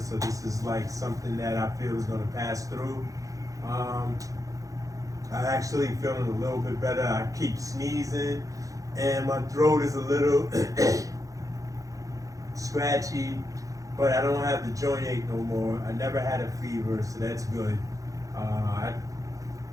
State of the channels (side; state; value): left; late; 0.16 ms